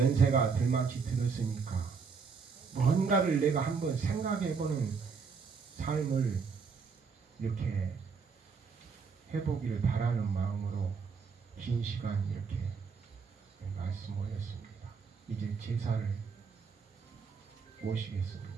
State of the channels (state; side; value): quieter; left; 5.4 dB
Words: 들만치 들었으니까 뭔가를 내가 한번 생각해보는 삶을 이렇게 해보기를 바라는 마음으로 긴 시간 이렇게 말씀 올렸습니다. 이제 제사를